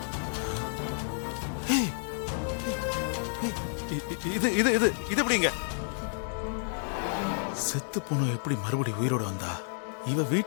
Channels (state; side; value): silent; right; 57 dB below the other